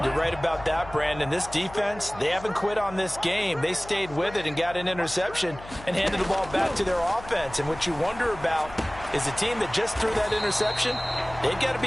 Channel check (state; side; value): noise; left; hum, 17 dB below the sound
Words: You're right about that, Brandon. This defense, they haven't quit on this game. They stayed with it and got an interception and handed the ball back to their offense. And what you wonder about is a team that just threw that interception, they've got to